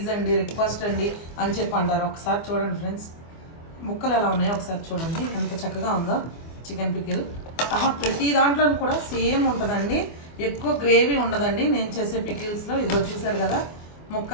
అండి, రిక్వెస్ట్ అండి అని చెప్పి అంటారు. ఒకసారి చూడండి ఫ్రెండ్స్, ముక్కలు ఎలా ఉన్నాయో ఒకసారి చూడండి, ఎంత చక్కగా ఉందో చికెన్ పికిల్. ప్రతి దాంట్లో కూడా సేమ్ ఉంటుందండి, ఎక్కువ గ్రేవీ ఉండదండి నేను చేసే పికిల్స్లో. ఇదిగో చూసారు కదా,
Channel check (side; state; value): right; late; 24 ms